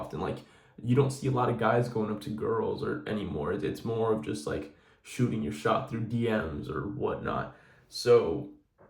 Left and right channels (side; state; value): both; identical; correlation 1.00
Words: Like, you don't see a lot of guys going up to girls or anymore. It's more of just like shooting your shot through DMs or whatnot. So